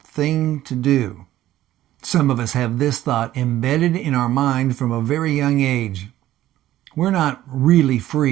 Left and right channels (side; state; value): left; quieter; 13.9 dB